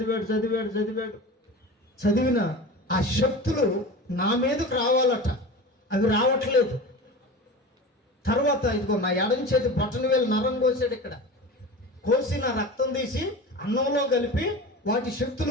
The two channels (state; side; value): normal; both; correlation 0.32